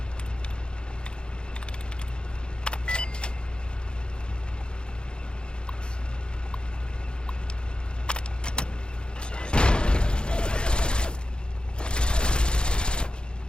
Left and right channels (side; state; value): right; late; 0.051 ms